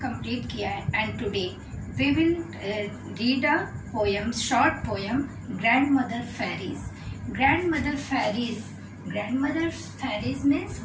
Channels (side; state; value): both; identical; correlation 1.00